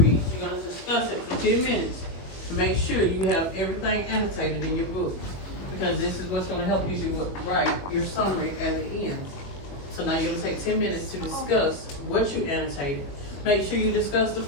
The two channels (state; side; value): late; right; 21 ms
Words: you're gonna discuss it for 10 minutes to make sure you have everything annotated in your book. Because this is what's gonna help you do write your summary at the end. So now you're gonna take 10 minutes to discuss what you annotated. Make sure you discuss the